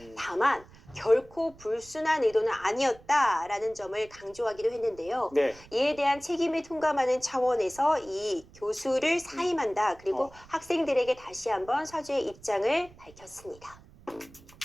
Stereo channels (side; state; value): right; noise; rumble, 23 dB below the sound